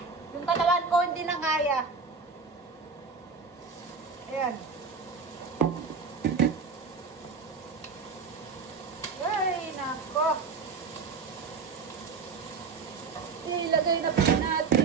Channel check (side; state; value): left; quieter; 5.0 dB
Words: yung katawan ko hindi na kaya. Ayan. Ay, nako. Ilagay na po